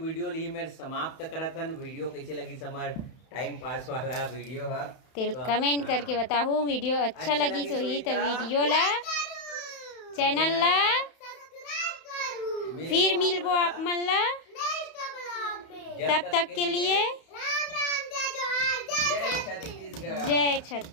ली मेरे समाप्त करा था। वीडियो कैसे लगी समार टाइम पास वाला वीडियो है तो कमेंट करके बताओ। वीडियो अच्छा लगी सो ही तो वीडियो ला चैनल ला फिर मिलबो आप मन ला। तब तक के लिए जय छत्तीसगढ़। जय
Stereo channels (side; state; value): right; late; 31 ms